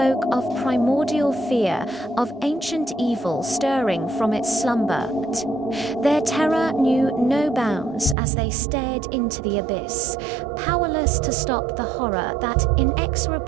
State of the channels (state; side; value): drops out; left; at 8.2 s